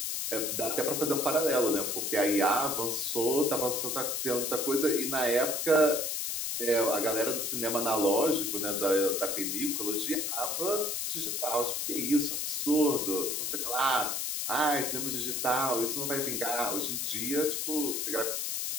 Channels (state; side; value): noise; left; hiss, 1 dB below the sound